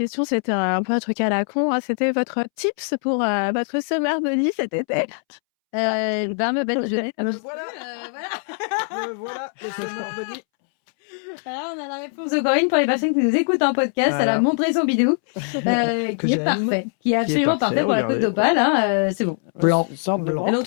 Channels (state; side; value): silent; right; 64 dB below the other